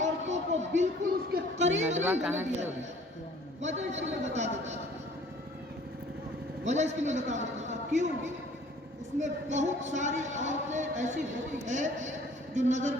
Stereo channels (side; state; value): both; normal; correlation 0.53